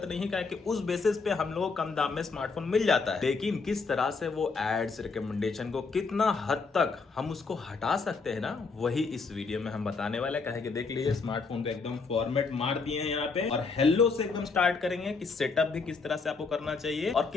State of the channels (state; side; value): quieter; right; 4.5 dB